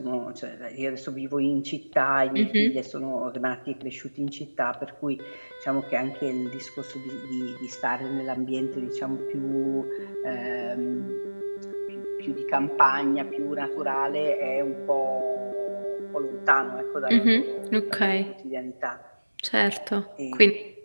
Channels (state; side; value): inverted; both; correlation -1.00